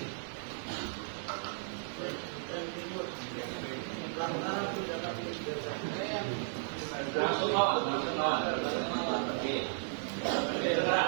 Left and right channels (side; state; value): left; silent; digital silence